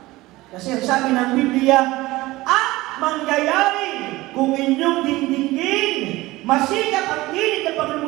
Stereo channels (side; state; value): left; quieter; 19.1 dB